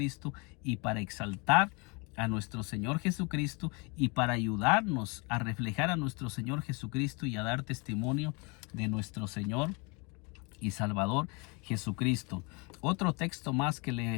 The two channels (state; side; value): quieter; right; 30.3 dB